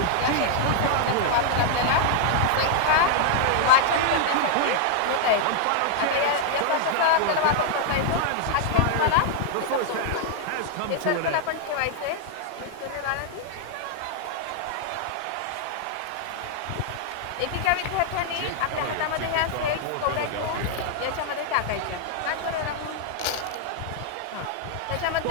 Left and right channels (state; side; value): different; both; correlation 0.00